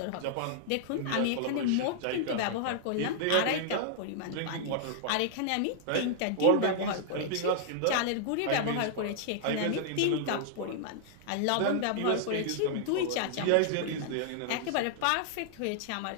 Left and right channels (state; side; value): different; both; correlation -0.01